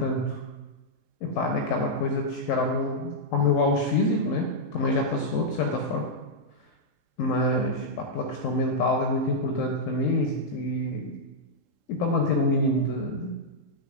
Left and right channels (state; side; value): late; right; 3.8 ms